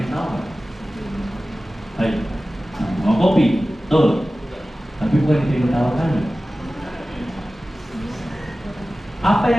tahu nggak? Ayo, mau kopi, betul. Tapi bukan itu yang ditawarkan. Apa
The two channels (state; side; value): normal; both; correlation 0.96